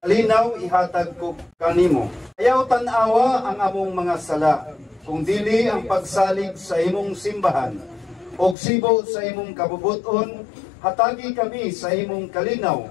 kalinaw ihatag ko kanimo. Ayaw tan-awa ang among mga sala, kung dili ang pagsalig sa imong simbahan, og sibo sa imong kabubuton, hatagi kami sa imong kalinaw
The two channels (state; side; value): drops out; right; at 8.6 s